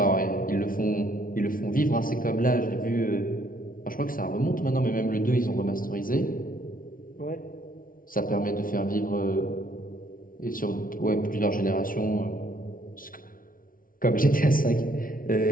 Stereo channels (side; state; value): right; late; 0.40 ms